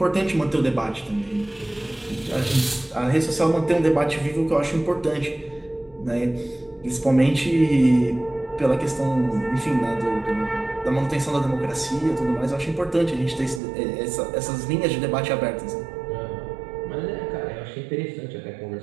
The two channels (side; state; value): left; drops out; at 13.6 s